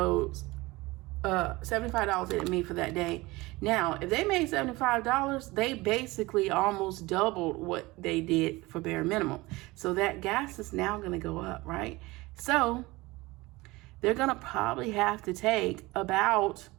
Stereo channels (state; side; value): quieter; left; 21.4 dB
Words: $75 that it made for that day. Now, if they made $75, they basically almost doubled what they did for bare minimum. So that gas is now going to go up, right? So they're going to probably have to take about,